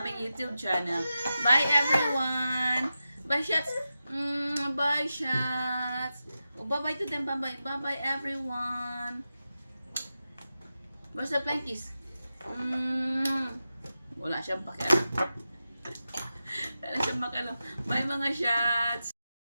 aming YouTube channel. Bye, everyone. Bye, shots. Bye, shots. Oh, bye-bye to them. Bye-bye. Bye-bye, everyone. Where's the plankies? Wala siyang pakialam. Wala siyang pakialam. Bye, mga shots.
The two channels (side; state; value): both; inverted; correlation -0.91